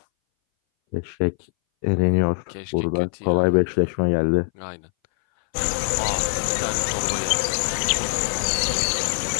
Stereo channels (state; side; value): silent; right; 61 dB below the other